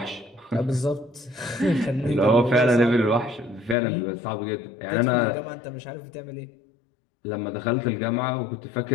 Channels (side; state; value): right; drops out; at 3.8 s